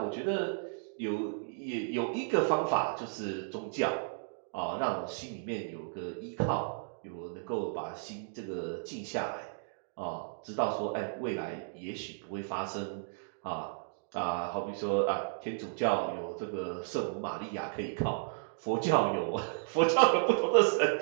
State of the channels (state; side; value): silent; left; digital silence